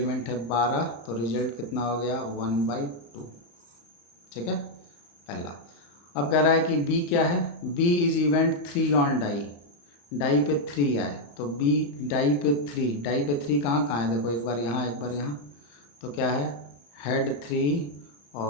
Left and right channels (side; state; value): right; late; 35 ms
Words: है? 12। तो रिजल्ट कितना हो गया? 1/2। ठीक है, पहला। अब कह रहा है कि बी क्या है? B is event 3 on die. Die पे 3 आए, तो बी डाई पे 3। डाई पे 3 कहाँ कहाँ है? देखो, एक बार यहाँ, एक बार यहाँ। तो क्या है? हेड 3